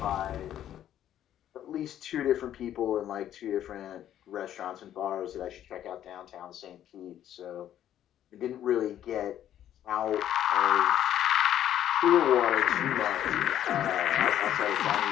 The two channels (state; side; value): quieter; right; 11.2 dB